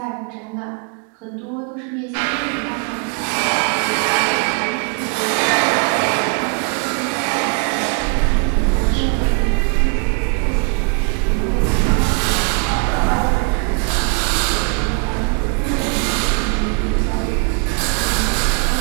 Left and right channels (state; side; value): quieter; left; 38.4 dB